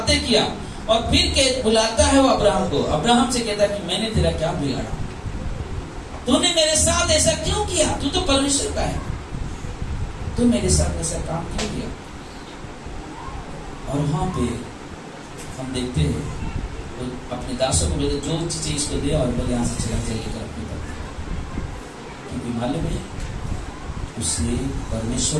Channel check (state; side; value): identical; both; correlation 1.00